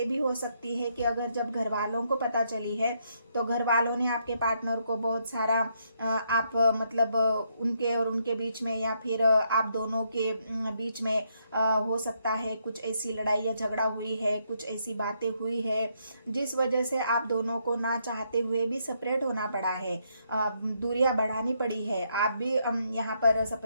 भी हो सकती है कि अगर जब घर वालों को पता चली है, तो घर वालों ने आपके पार्टनर को बहुत सारा आप मतलब उनके और उनके बीच में, या फिर आप दोनों के बीच में हो सकता है कुछ ऐसी लड़ाई या झगड़ा हुई है, कुछ ऐसी बातें हुई है जिस वजह से आप दोनों को ना चाहते हुए भी सेपरेट होना पड़ा है, दूरियां बढ़ानी पड़ी है। आप भी यहाँ पर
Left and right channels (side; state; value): both; inverted; correlation -0.75